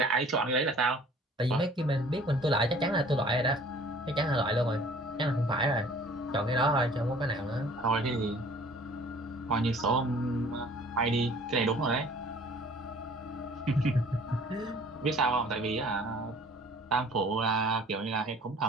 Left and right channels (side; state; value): both; normal; correlation 0.51